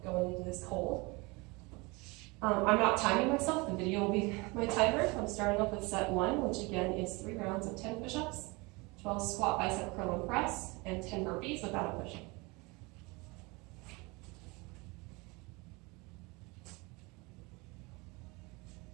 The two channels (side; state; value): left; quieter; 26.1 dB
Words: going into this cold. I'm not timing myself. The video will be my timer. I'm starting off with set 1, which again is 3 rounds of 10 push-ups, 12 squat, bicep, curl, and press, and 10 burpees without a push-up.